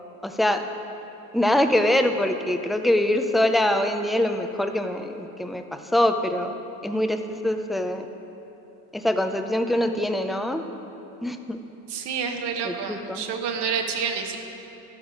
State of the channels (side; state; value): both; normal; correlation 0.76